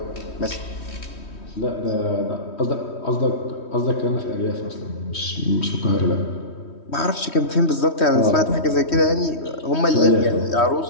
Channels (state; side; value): late; right; 3.1 ms